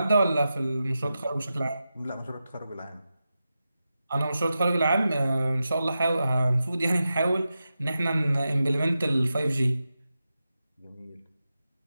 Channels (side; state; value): both; inverted; correlation -0.91